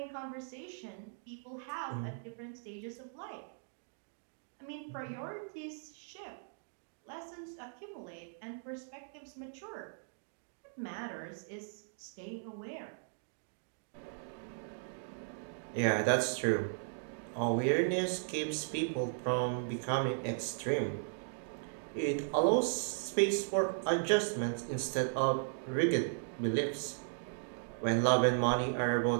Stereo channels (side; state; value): left; silent; digital silence